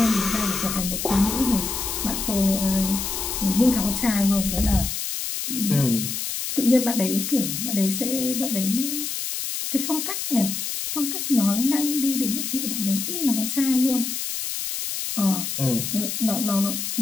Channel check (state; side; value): noise; left; hiss, 4 dB below the sound